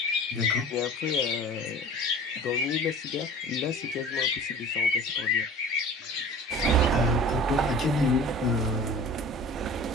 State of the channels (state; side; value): normal; both; correlation 0.41